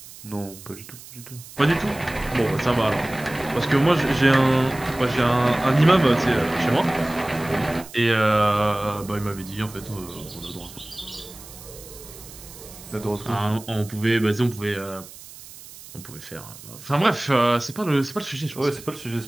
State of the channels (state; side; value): noise; right; hiss, 17 dB below the sound